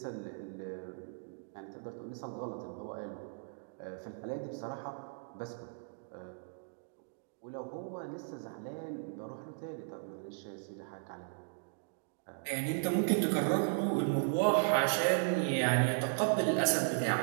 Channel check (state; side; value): silent; left; digital silence